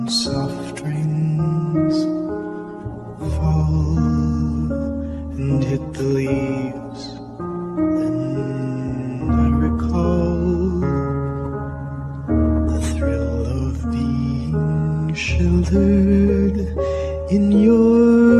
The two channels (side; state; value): both; identical; correlation 1.00